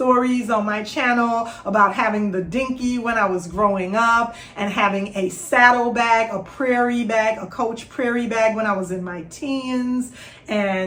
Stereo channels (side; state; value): both; identical; correlation 1.00